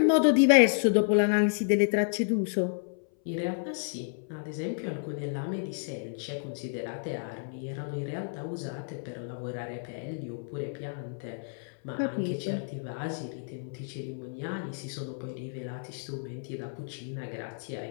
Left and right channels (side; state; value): right; silent; 57 dB below the other